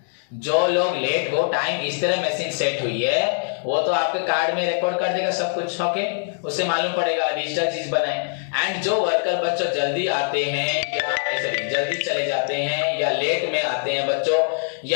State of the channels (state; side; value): silent; right; digital silence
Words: जो लोग लेट हो, टाइम इस तरह मशीन सेट हुई है, वो तो आपके कार्ड में रिकॉर्ड कर देगा सब कुछ, ओके, उससे मालूम पड़ेगा, डिजिटल चीज बनाए। एंड जो वर्कर बच्चों जल्दी आते हैं या जल्दी चले जाते हैं या लेट में आते हैं बच्चों